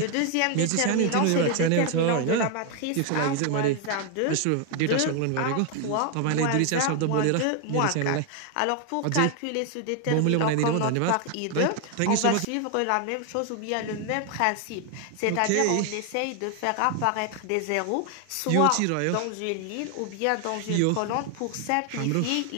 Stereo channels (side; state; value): both; different; correlation 0.01